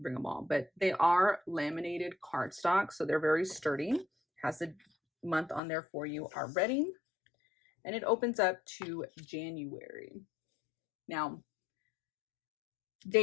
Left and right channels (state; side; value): drops out; right; at 5.6 s